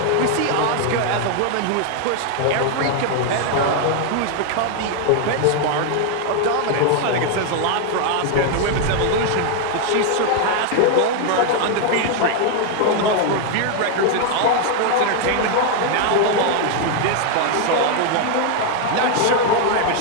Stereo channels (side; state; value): both; different; correlation 0.00